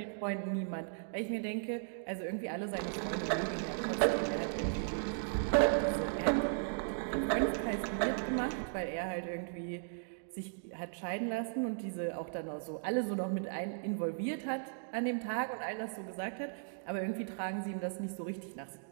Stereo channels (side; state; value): left; silent; digital silence